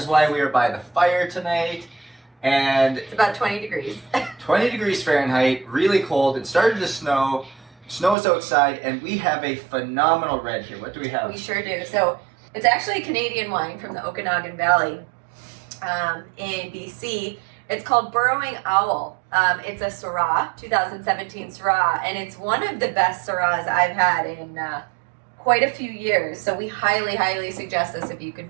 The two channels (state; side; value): drops out; left; at 8.2 s